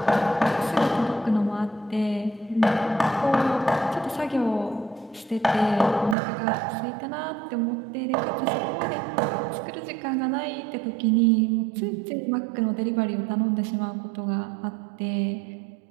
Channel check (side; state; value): left; drops out; at 6.2 s